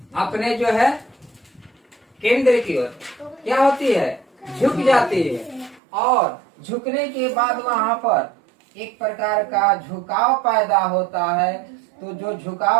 अपने जो है केंद्र की ओर क्या होती है? झुक जाती है। और झुकने के बाद वहां पर एक प्रकार का झुकाव पैदा होता है। तो जो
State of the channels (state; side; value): drops out; left; at 5.8 s